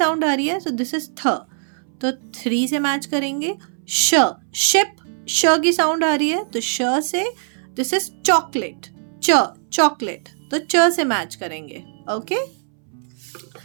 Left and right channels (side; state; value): left; silent; 65 dB below the other